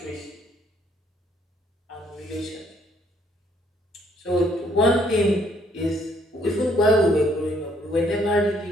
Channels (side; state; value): both; normal; correlation 0.66